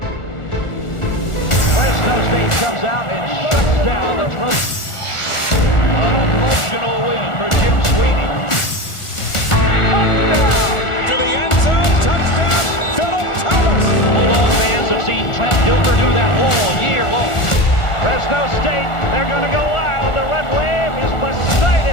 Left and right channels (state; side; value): late; right; 1.4 ms